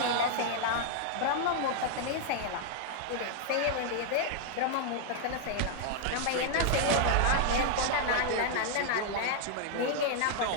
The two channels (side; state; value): both; different; correlation 0.00